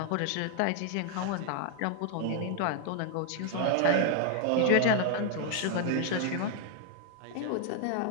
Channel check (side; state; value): both; different; correlation 0.00